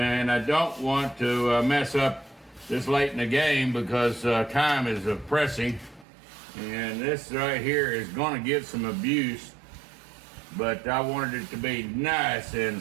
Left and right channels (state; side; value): drops out; left; at 6.1 s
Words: I don't want to mess up this late in the game because time is pressing. And this right here is going to get some abuse, but I wanted it to be nice and